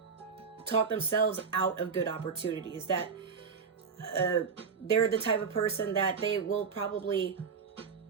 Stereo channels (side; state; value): left; quieter; 5.8 dB